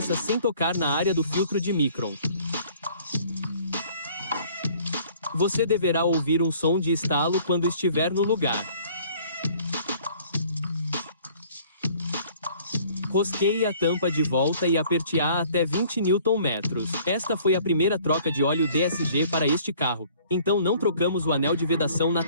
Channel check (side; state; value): both; inverted; correlation -0.55